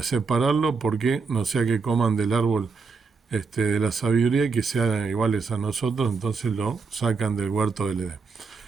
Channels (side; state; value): left; quieter; 4.8 dB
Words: separarlo, porque no sea que coman del árbol de la sabiduría y que sean iguales a nosotros. Entonces lo sacan del huerto del Edén.